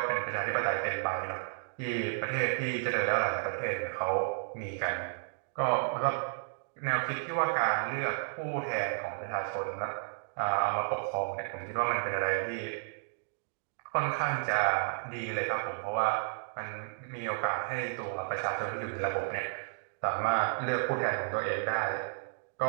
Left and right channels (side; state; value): left; silent; digital silence